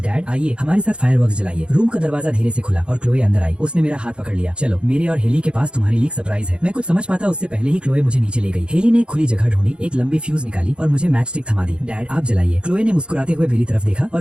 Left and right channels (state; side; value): late; left; 0.055 ms